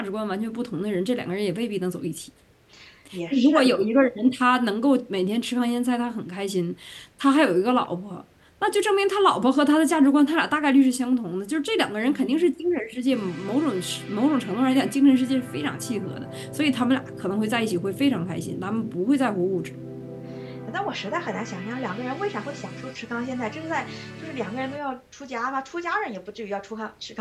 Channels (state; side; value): identical; both; correlation 1.00